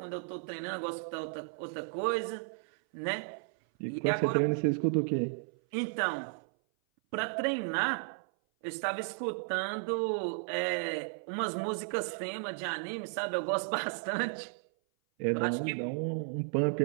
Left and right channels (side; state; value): left; silent; 55 dB below the other